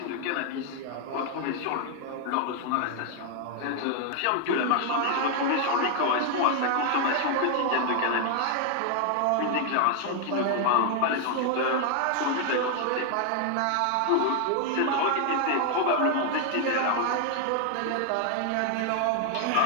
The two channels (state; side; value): different; both; correlation 0.00